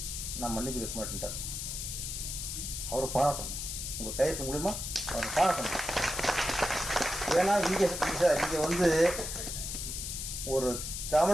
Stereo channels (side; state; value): left; noise; hiss, 5 dB below the sound